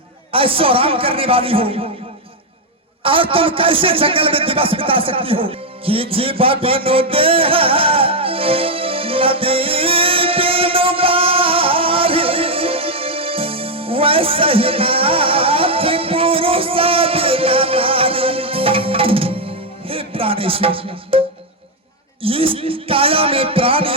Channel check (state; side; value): normal; both; correlation 0.02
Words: ऐशो आराम करने वाली हो, और तुम कैसे जंगल में दिवस बिता सकती हो कि जीवा बिनो देह नदी बिनो बारी, वैसे ही नाथ पुरुष बिना नारी। हे प्राणेश्वर, इस काया में